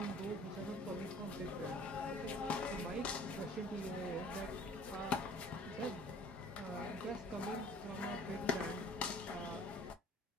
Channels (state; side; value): normal; both; correlation 0.51